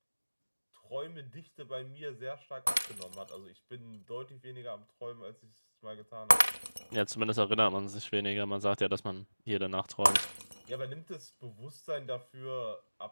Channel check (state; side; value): inverted; both; correlation -1.00